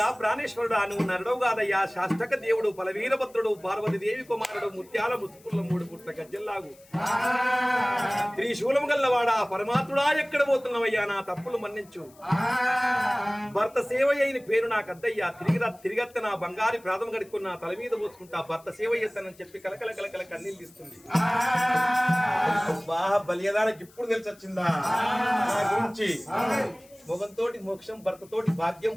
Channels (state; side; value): noise; left; hiss, 27 dB below the sound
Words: ప్రాణేశ్వరుడు నువ్వు నరడవు కాదయ్యా శాస్తక దేవుడు పలవీరభద్రుడు పార్వతి దేవి కుమారుడు ముత్యాల ముసుకుల 3 పుట్ల గజ్జల్లాగు త్రిశూలం గల్లవాడా పరమాత్ముడా ఎక్కడ పోతున్నావయ్యా నా తప్పులు మన్నించు భర్త సేవ అయిన పేరు నాకు అద్దయ్యా తిరిగత్త నా బంగారి ప్రాధం గడుక్కున్న తల మీద పోసుకుంటా భర్త సేవ చేస్తానని చెప్పి కలకల కలకల కన్నీళ్ళు ఇస్తుంది బాగా బలియదానికి ఇప్పుడు తెలిసి వచ్చిందా నా గురించి మొగంతోటి మోక్షం భర్తతోటి భాగ్యం